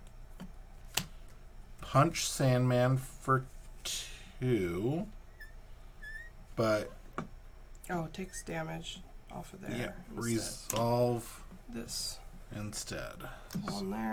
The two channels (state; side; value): identical; both; correlation 1.00